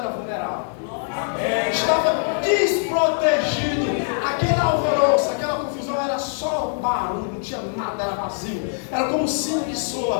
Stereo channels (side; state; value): right; silent; digital silence